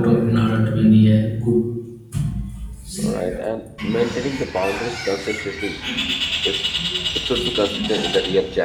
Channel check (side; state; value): both; identical; correlation 1.00